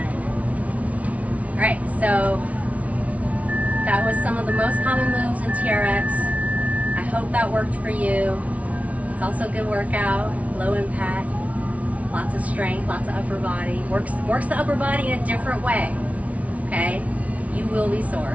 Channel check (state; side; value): late; left; 0.067 ms